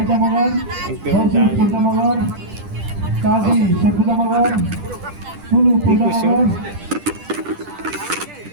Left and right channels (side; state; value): left; late; 10 ms